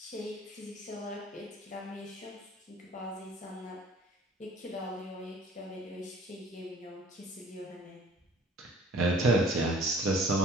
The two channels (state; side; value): normal; both; correlation 0.52